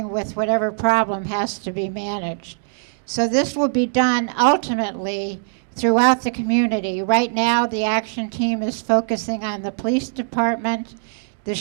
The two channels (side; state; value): left; silent; digital silence